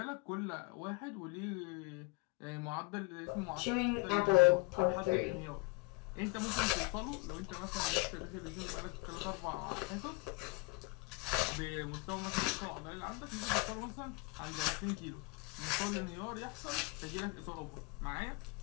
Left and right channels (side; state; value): right; quieter; 27.5 dB